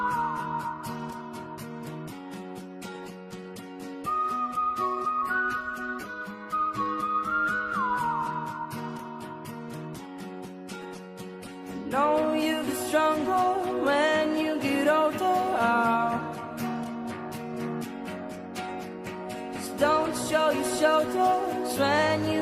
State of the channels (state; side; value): identical; both; correlation 1.00